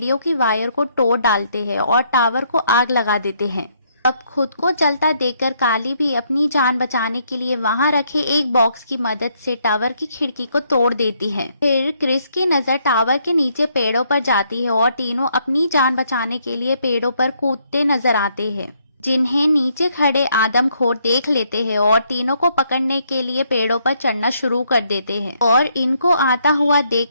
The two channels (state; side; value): inverted; both; correlation -0.72